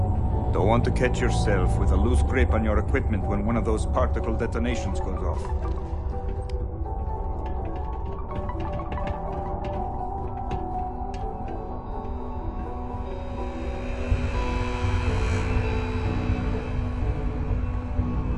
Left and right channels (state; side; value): identical; both; correlation 1.00